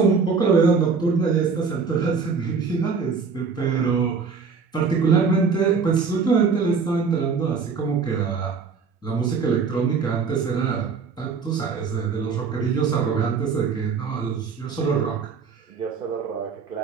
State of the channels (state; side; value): quieter; left; 5.4 dB